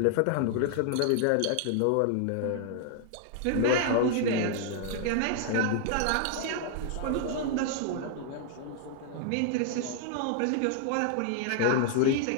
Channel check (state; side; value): different; both; correlation 0.00